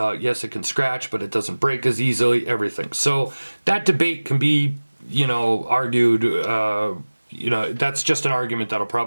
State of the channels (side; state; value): both; inverted; correlation -1.00